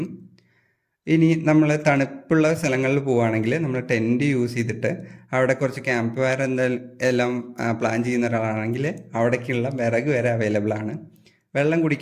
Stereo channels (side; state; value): both; identical; correlation 1.00